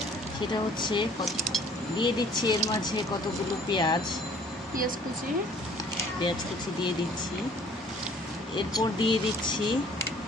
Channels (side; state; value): both; normal; correlation 0.55